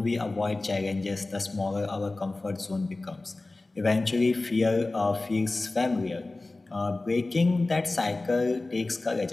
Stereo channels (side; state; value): right; quieter; 3.1 dB